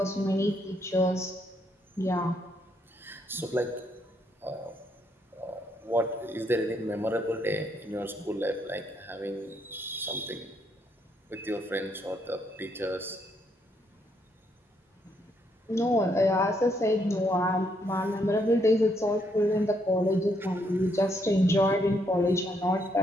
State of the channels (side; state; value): both; normal; correlation 0.74